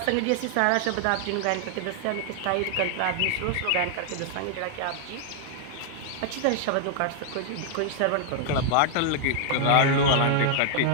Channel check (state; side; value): different; both; correlation 0.00